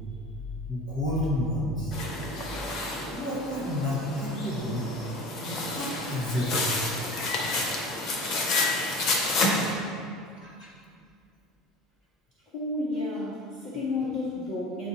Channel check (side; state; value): both; normal; correlation 0.38